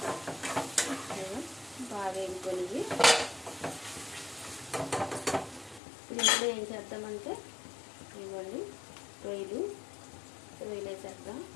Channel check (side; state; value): right; drops out; at 5.8 s